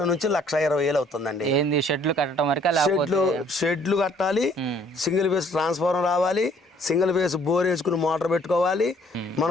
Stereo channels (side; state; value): both; normal; correlation 0.60